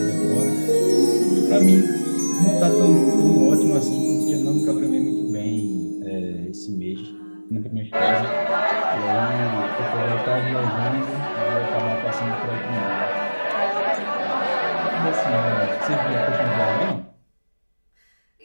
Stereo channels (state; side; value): inverted; both; correlation -1.00